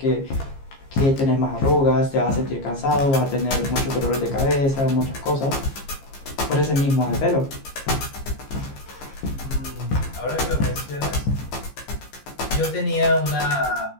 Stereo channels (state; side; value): late; right; 15 ms